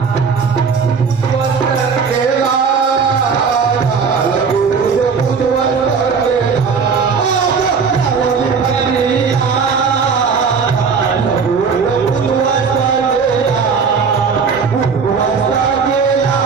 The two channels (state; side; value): quieter; left; 5.6 dB